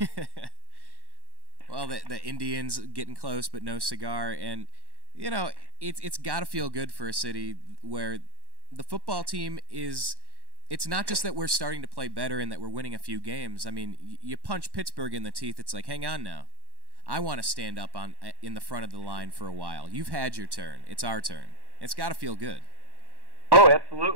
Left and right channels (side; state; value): left; late; 1.1 ms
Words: Well, the Indians getting close but no cigar. And, it's got to feel good for a city where the football team is... It's not just that we're starting to play better and that we're winning a few games. I mean, you punch Pittsburgh in the teeth, it's like, hang on now. I want to stand up in the front of the line for a while. You've had your turn. It's our turn. It's got to feel good. Oh,